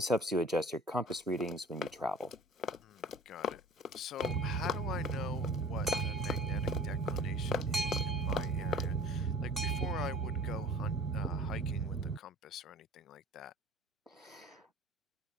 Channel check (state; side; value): normal; both; correlation 0.45